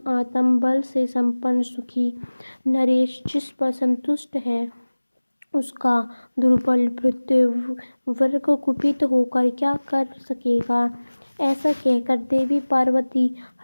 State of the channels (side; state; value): both; inverted; correlation -1.00